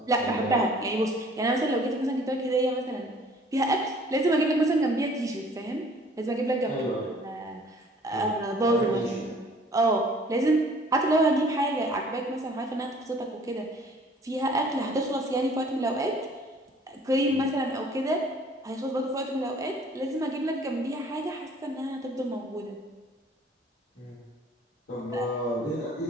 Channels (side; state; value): both; normal; correlation 0.54